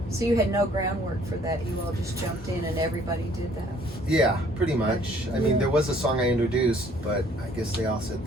So you had no groundwork for that. You all just jumped in and everybody did that. Yeah, pretty much. I mean, there was a song I introduced, but I guess they all said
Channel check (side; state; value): both; normal; correlation 0.59